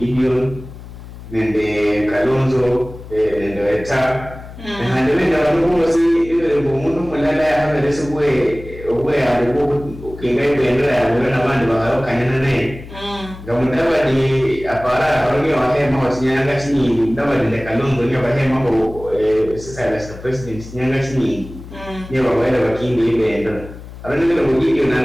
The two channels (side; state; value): left; noise; hum, 15 dB below the sound